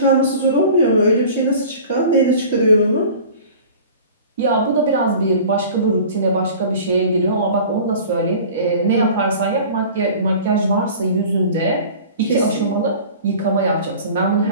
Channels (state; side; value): inverted; both; correlation -0.42